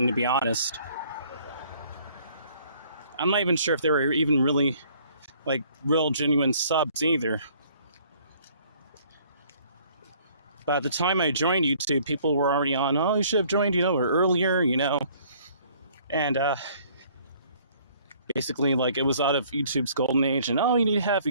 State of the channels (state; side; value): inverted; both; correlation -0.58